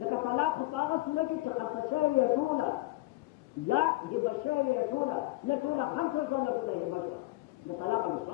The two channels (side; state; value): right; quieter; 19.8 dB